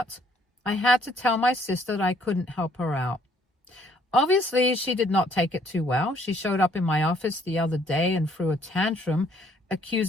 I had to tell my sister that I couldn't help her out. Obviously, she did not take it too well. She showed up in my office the other day and threw a tantrum,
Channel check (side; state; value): both; normal; correlation 0.64